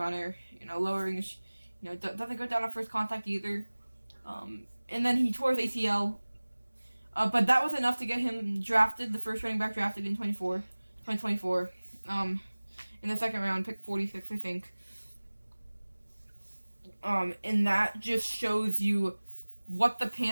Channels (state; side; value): inverted; both; correlation -1.00